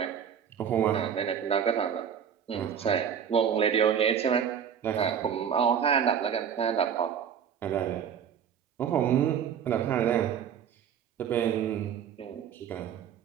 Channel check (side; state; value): left; quieter; 8.2 dB